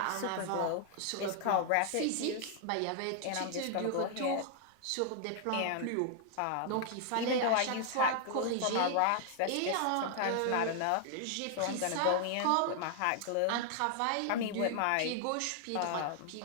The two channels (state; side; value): different; both; correlation 0.00